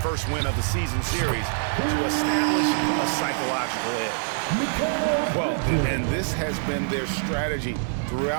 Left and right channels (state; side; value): silent; left; digital silence